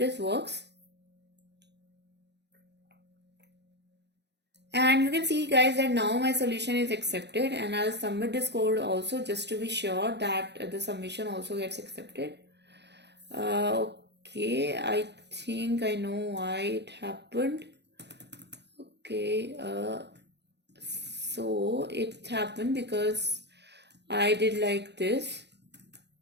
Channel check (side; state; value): left; late; 0.50 ms